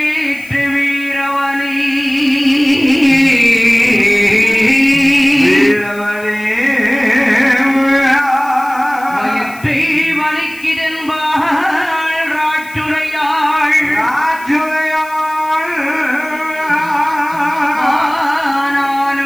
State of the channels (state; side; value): noise; left; hiss, 22 dB below the sound